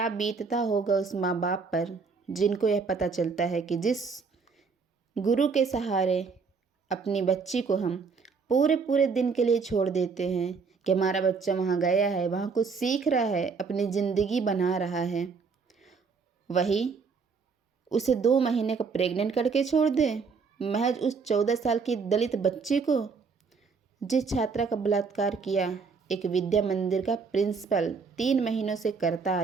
बीतता होगा उस माँ बाप पर जिनको यह पता चलता है कि जिस गुरु के सहारे अपनी बच्ची को हम पूरे पूरे दिन के लिए छोड़ देते हैं कि हमारा बच्चा वहाँ गया है, वहाँ कुछ सीख रहा है, अपनी ज़िंदगी बना रहा है, वही उसे 2 महीने का प्रेग्नेंट करके छोड़ दे। महज उस 14 साल की दलित बच्ची को, जिस छात्रा का बलात्कार किया एक विद्या मंदिर का प्रिंसिपल 3 महीनों से करता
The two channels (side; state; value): left; quieter; 5.1 dB